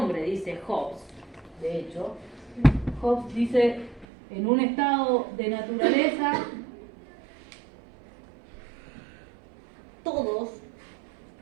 dice Hobbes. De hecho, Hobbes dice, en un estado de naturaleza, todos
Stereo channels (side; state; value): left; drops out; at 4.0 s